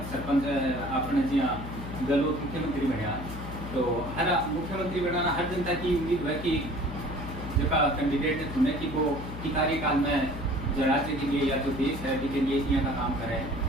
सरपंच आपने जहाँ गहलोत मुख्यमंत्री बनया, तो हर मुख्यमंत्री बनाना हर जनता की उम्मीद है कि जो कैंडिडेट ने चुने कि वो की कार्यकाल में जो राज्य के लिए या जो देश है के लिए यहाँ का काम करे,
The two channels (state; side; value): noise; left; hum, 9 dB below the sound